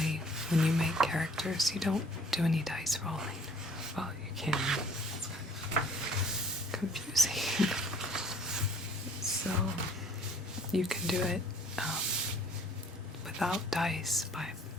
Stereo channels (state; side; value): normal; both; correlation 0.56